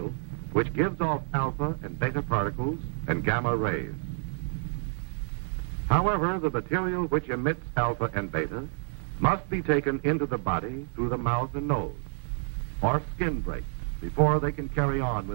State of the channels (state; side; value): silent; left; digital silence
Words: which gives off alpha and beta particles and gamma rays. However, the material which emits alpha and beta must be taken into the body through the mouth and nose, or skin breaks, before they can carry on